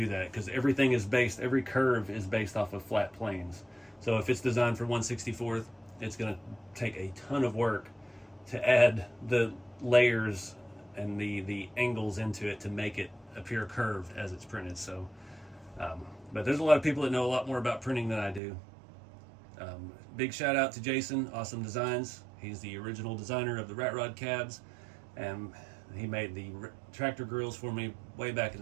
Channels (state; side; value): drops out; left; at 18.4 s